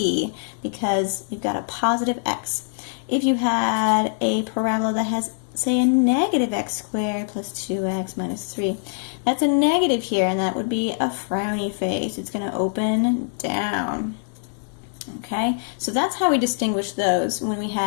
because you've got a positive x. If you had a parabola that has, say, a negative x squared plus 2x minus 3, that's a negative here, and that would be a frowny face. It's going to open down. Okay, so that's how we distinguish those when we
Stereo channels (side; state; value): right; silent; digital silence